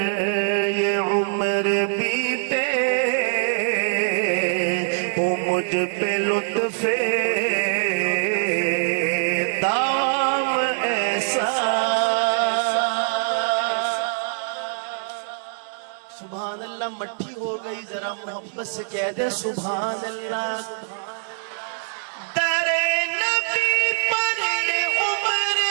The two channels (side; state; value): left; silent; digital silence